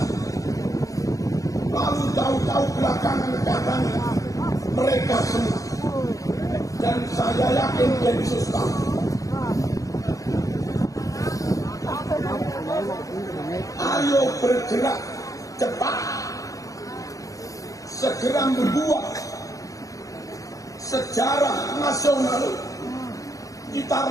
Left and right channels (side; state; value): right; late; 0.16 ms